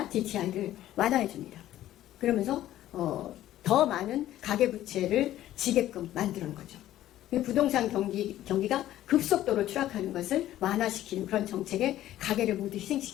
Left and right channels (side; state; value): right; quieter; 13.5 dB